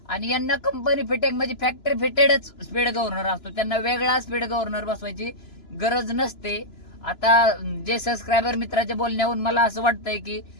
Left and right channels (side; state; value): right; late; 2.9 ms